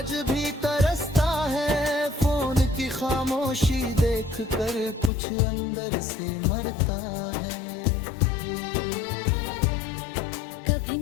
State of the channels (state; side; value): drops out; right; at 5.1 s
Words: भी तरसता है, फोन की खामोशी देख कर कुछ अंदर से मरता है। कभी